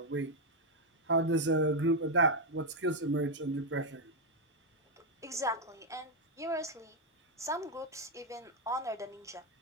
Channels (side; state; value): both; normal; correlation 0.02